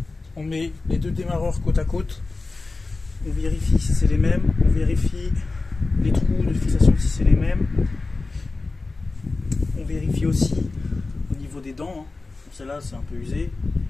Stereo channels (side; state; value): right; quieter; 3.6 dB